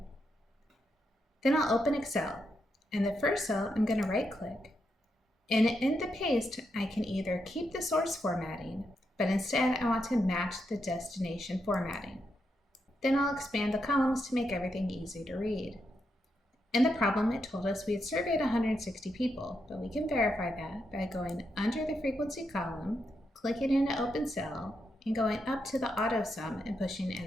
Then I'll open Excel. In the first cell, I'm going to right-click, and in the paste, I can either keep the source formatting, but instead I want to match the destination formatting. Then I'll expand the columns to make everything easy to read. In the problem, it told us we had surveyed 160 people, but we can verify that by going under the frequency column, clicking in an open cell, and going up to the auto sum and pushing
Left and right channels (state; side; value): normal; both; correlation 0.82